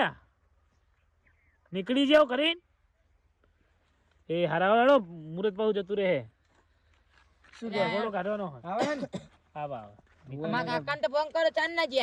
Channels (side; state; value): both; identical; correlation 1.00